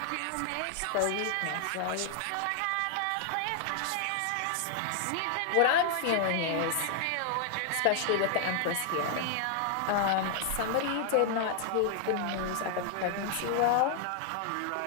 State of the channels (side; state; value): both; different; correlation 0.00